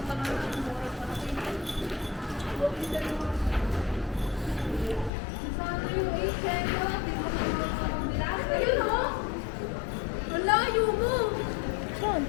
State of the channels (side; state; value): right; drops out; at 5.1 s